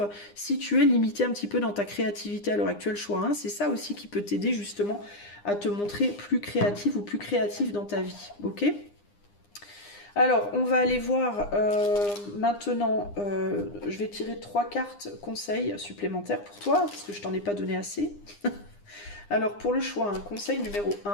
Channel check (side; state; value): right; late; 9.8 ms